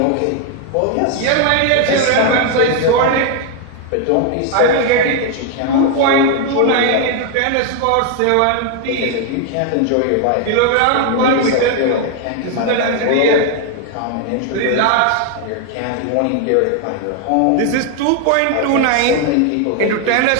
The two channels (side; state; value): both; different; correlation 0.01